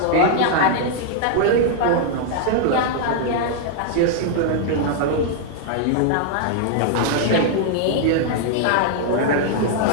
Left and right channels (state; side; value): different; both; correlation -0.01